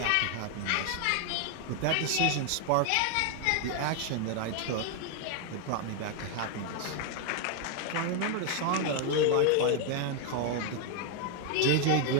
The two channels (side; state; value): both; different; correlation 0.00